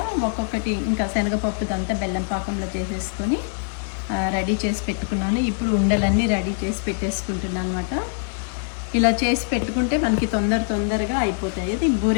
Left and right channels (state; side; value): silent; right; 58 dB below the other